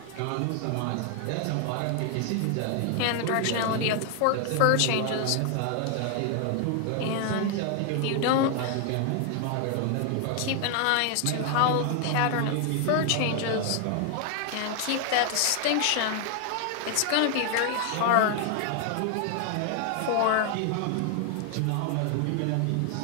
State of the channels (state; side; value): different; both; correlation 0.00